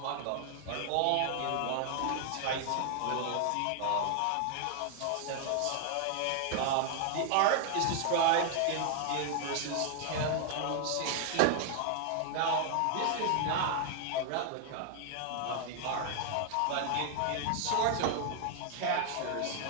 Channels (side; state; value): both; different; correlation 0.00